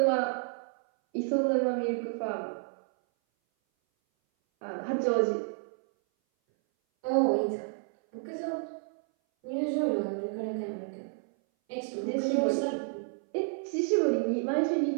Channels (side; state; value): left; silent; 57 dB below the other